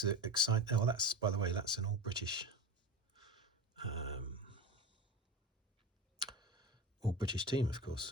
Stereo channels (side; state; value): both; normal; correlation 0.26